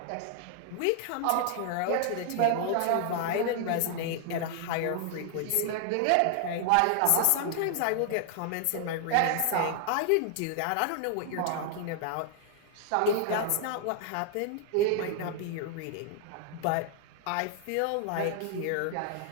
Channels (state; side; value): different; both; correlation 0.00